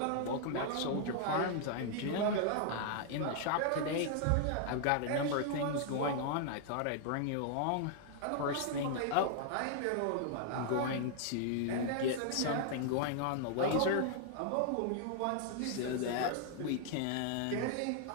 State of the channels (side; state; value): both; different; correlation 0.00